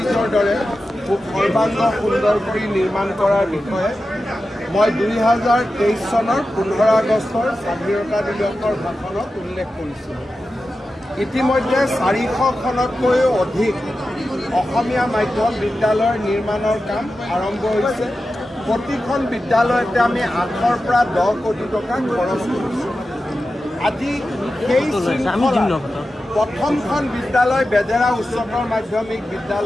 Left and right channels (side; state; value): both; normal; correlation 0.92